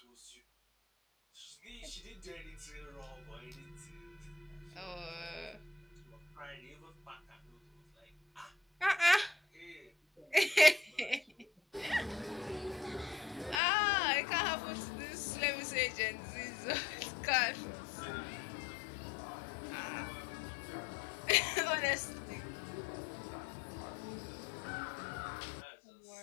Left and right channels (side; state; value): right; drops out; at 13.6 s